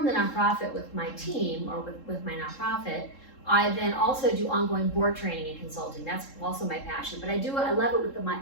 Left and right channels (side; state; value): right; late; 3.7 ms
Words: the nonprofit with my team or with my nonprofit, I then also do ongoing board training and consulting. That's also my passion. But I love it with the